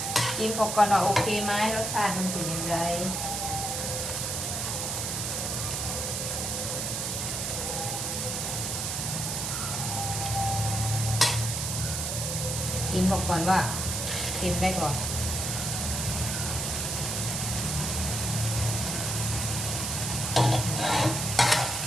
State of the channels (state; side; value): noise; right; hiss, 2 dB below the sound